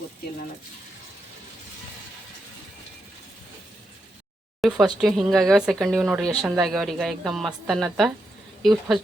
ಗೊತ್ತಿಲ್ಲ ನನಗೆ. ಫಸ್ಟ್ ಹಿಂಗಾಗ್ಯಾವ, ಸೆಕೆಂಡ್ ಇವು ನೋಡ್ರಿ ಎಷ್ಟು ಚಂದ ಆಗ್ಯಾವ್ರಿ. ಈಗ ಎಕ್ದಮ್ ಮಸ್ತ್ ಅನ್ನತ್ತ. ಇವು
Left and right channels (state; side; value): normal; both; correlation 0.84